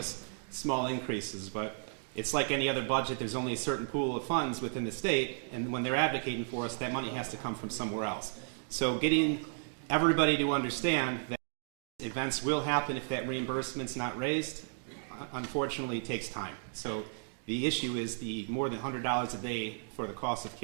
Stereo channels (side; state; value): left; silent; digital silence